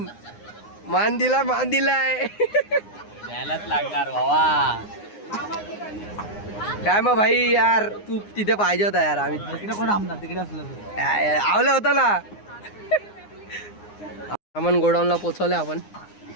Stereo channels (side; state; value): right; late; 9.7 ms